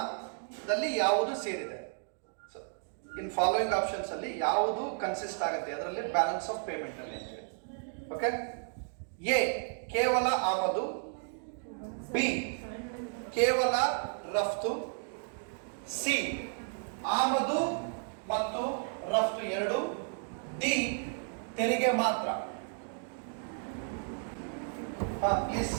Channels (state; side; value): silent; left; 56 dB below the other